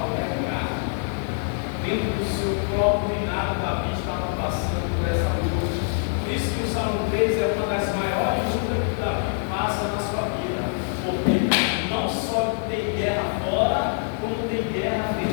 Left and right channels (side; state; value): right; silent; 62 dB below the other